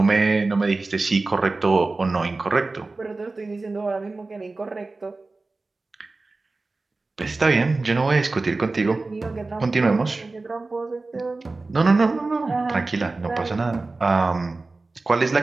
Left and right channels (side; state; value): left; quieter; 3.5 dB